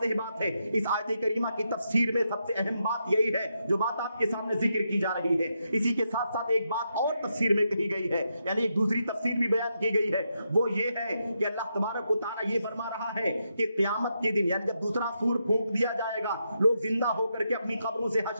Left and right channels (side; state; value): both; inverted; correlation -0.82